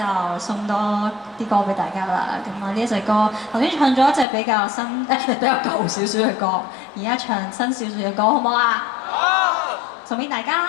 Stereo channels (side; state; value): right; drops out; at 4.2 s